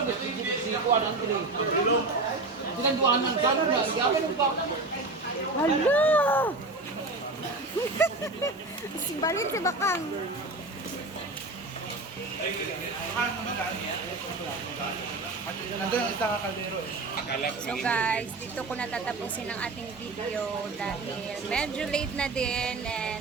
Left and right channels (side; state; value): left; quieter; 3.3 dB